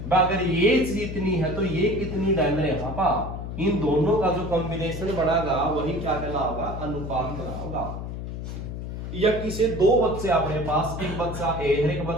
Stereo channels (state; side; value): noise; left; hum, 7 dB below the sound